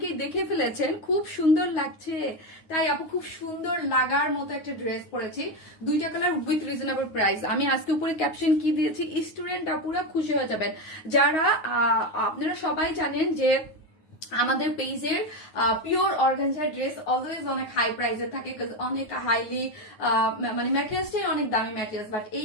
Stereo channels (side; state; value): right; late; 9.4 ms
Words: দেখে ফেলেছেন, খুব সুন্দর লাগছে। তাই আপু খুব সুন্দর লাগার মতো একটা ড্রেস পরেছি, দুইটা কালার উইথ রিজনেবল প্রাইস। আমি আজকে উপরে ক্যাপশন কি দিয়েছি, স্টুডেন্ট আপুরা খুশি হয়ে যাবেন। যারা আপনারা সবাই জানেন যে আমাদের পেজের পিওর অর্গানজার ড্রেস অলওয়েজ অনেক হাই প্রাইসে থাকে, অনেক হাইলি মানে ম্যাটেরিয়ালসটাই অনেক দামি ম্যাটেরিয়ালস, বাট